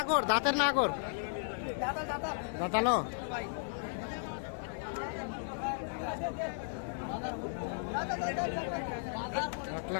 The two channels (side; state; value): right; silent; digital silence